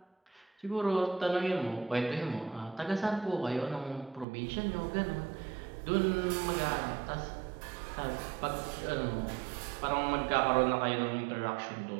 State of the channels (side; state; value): left; drops out; at 4.2 s